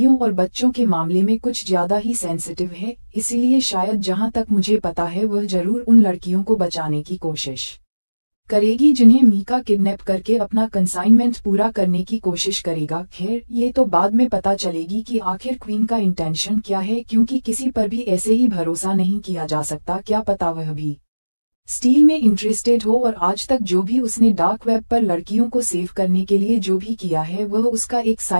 और बच्चों के मामले में कुछ ज्यादा ही सेंसिटिव है। इसीलिए शायद जहां तक मुझे पता है वह जरूर उन लड़कियों को बचाने की कोशिश करेगी जिन्हें मीका किडनैप करके अपना कंसाइनमेंट पूरा करने की कोशिश करेगा। खैर ये तो बाद में पता चलेगी कि आखिर क्वीन का इंटेंशन क्या है, क्योंकि किसी पर भी ऐसे ही भरोसा नहीं किया जा सकता। क्या पता वह भी स्टील में इंटरेस्टेड हो और आज तक जो भी उसने डार्क वेब पर लड़कियों को सेव करने के लिए जो भी किया है वह उसका एक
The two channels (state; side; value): inverted; both; correlation -1.00